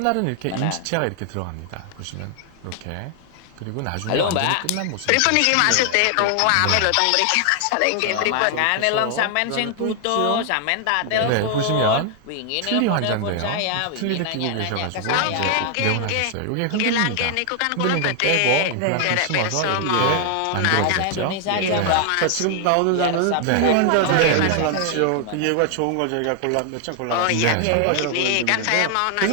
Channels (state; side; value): different; both; correlation 0.00